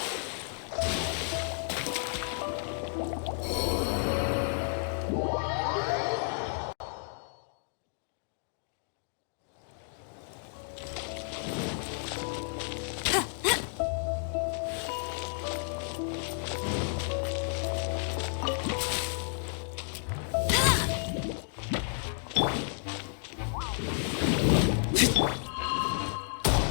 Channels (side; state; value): right; silent; digital silence